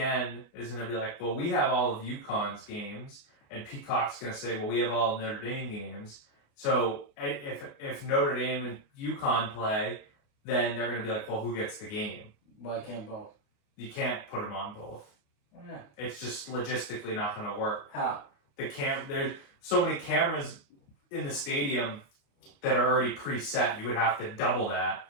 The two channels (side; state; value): right; late; 29 ms